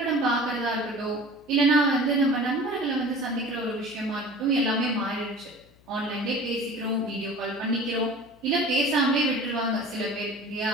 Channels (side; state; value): left; noise; hum, 29 dB below the sound